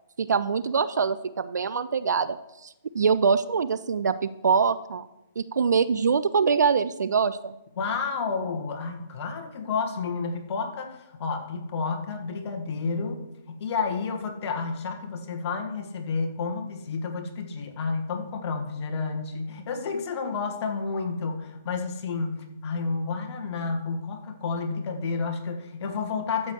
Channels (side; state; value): both; inverted; correlation -0.57